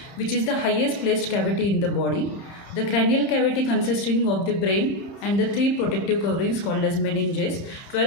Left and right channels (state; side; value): late; right; 30 ms